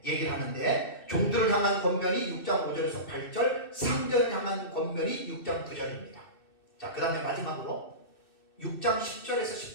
얘기를 하는데, 종들을 향한 권면이 6장 5절에서 8절, 상전을 향한 권면이 6장 9절입니다. 자, 그 다음에 마지막으로 6장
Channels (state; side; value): late; right; 2.6 ms